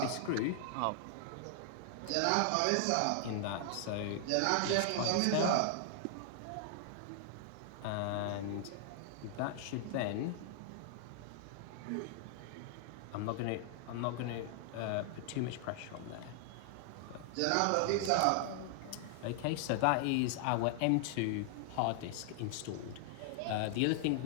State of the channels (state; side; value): different; both; correlation 0.00